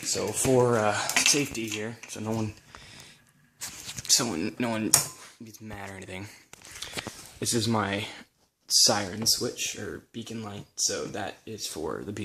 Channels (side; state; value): both; identical; correlation 1.00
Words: So for safety here, so no one gets mad or anything, this is my siren switch, or beacon light, so that is for the